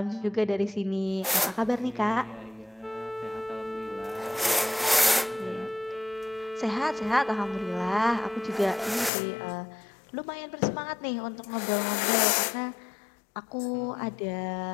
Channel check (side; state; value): right; drops out; at 9.1 s